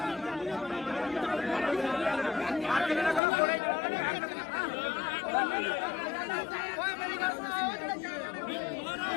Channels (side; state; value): right; drops out; at 3.2 s